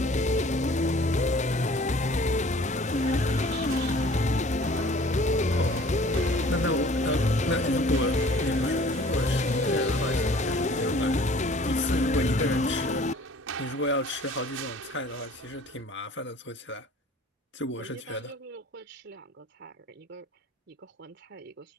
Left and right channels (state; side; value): normal; both; correlation 0.51